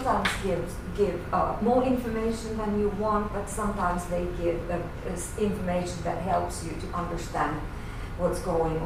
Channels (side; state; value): both; identical; correlation 1.00